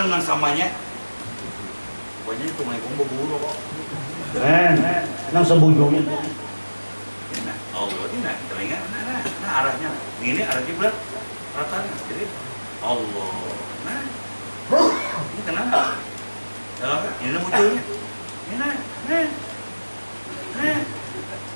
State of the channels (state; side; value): inverted; both; correlation -1.00